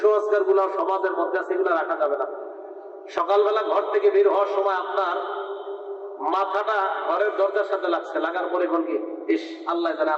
গুলো সমাজের মধ্যে আছে, এগুলো রাখা যাবে না। সকালবেলা ঘর থেকে বের হওয়ার সময় আপনার মাথাটা ঘরের দরজার সাথে লাগছে, লাগার পরে কোন কি ইস আল্লাহ জানে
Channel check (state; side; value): identical; both; correlation 1.00